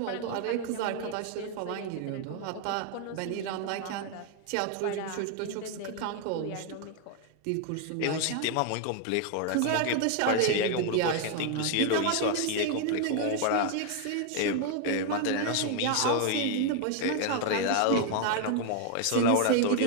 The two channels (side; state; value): both; different; correlation 0.00